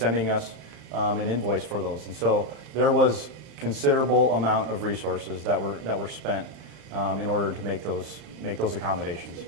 us an invoice for those. And so there was considerable amount of resources that were spent in order to make those accommodations.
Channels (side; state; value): left; late; 35 ms